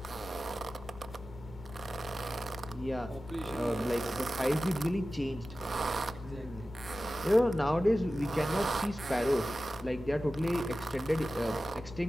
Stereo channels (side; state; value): both; normal; correlation 0.95